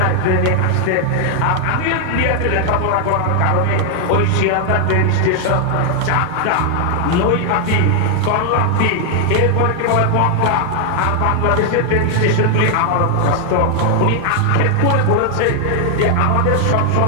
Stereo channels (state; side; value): different; both; correlation 0.00